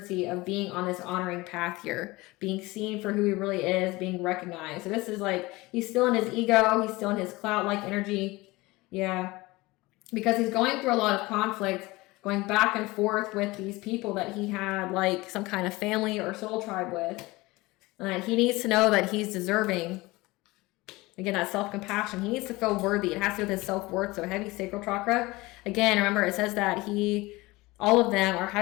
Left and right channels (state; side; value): quieter; right; 21.4 dB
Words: of being on this honoring path here, being seen for who he really is, being recognized. So this is like, he's still in his ego, he's still in his cloud-like energy. Yeah, because he's going through a lot of conflict, going back and forth with these people that he had like some kind of family or soul tribe with. And he needs to know that he's deserving. Again, that self-compassion. He needs to feel worthy. It has to do with his self-worth. So heavy sacral chakra. Again, remember, it says that all of them are